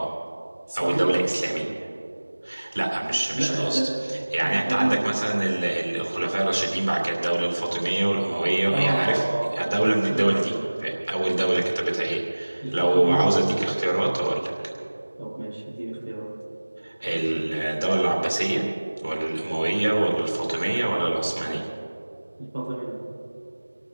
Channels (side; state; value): both; inverted; correlation -1.00